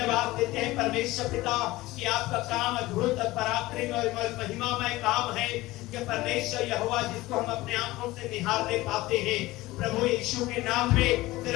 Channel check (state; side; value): quieter; right; 18.7 dB